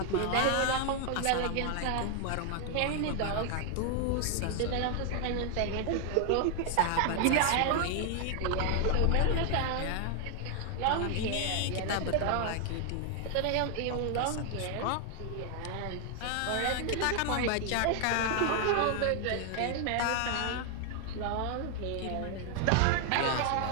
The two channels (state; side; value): different; both; correlation 0.00